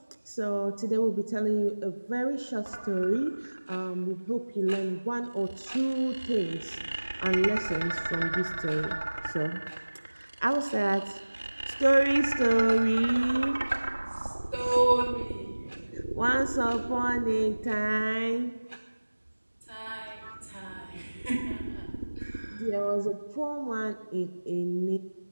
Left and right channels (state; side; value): inverted; both; correlation -1.00